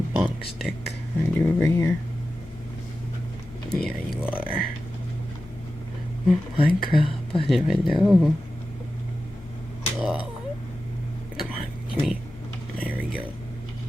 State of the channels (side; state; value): both; normal; correlation 0.93